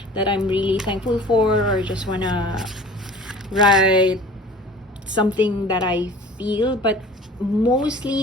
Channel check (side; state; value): both; normal; correlation 0.44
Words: that I'm really thankful for, or just want to write something that I feel. But